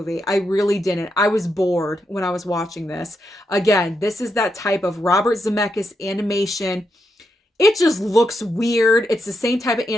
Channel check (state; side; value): normal; both; correlation 0.83